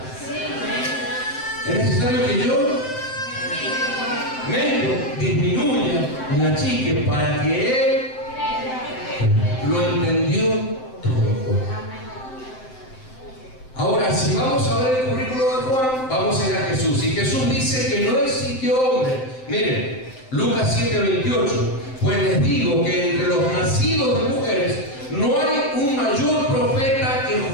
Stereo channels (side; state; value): right; late; 7.8 ms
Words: Es necesario que yo me disminuya, me achique, para que él lo entendió todo. Ahora, si vamos a ver el currículo de Juan, vamos a ir a Jesús. Y Jesús dice que no existió hombre. Miren, Lucas 7:28. Pues les digo que entre los nacidos de mujeres no hay un mayor profeta que